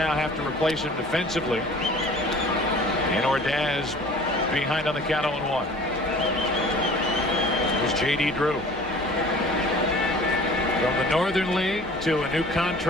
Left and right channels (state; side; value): normal; both; correlation 0.46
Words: have to replace him defensively. And Ordaz behind on the count 0-1. Here's J.D. Drew. From the Northern League to a new